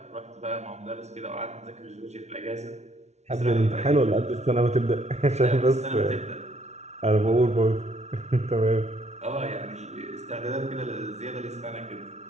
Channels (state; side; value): late; left; 0.32 ms